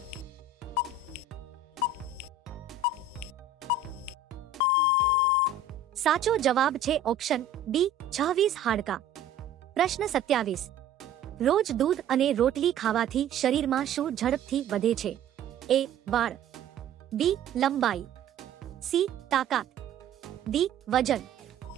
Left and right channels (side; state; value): left; quieter; 4.9 dB